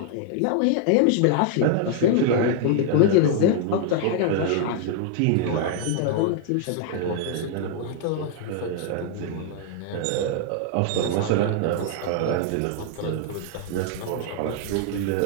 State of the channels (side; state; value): both; different; correlation 0.00